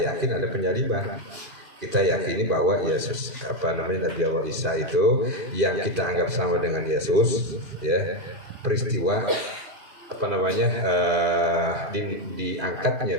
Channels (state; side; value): late; left; 2.5 ms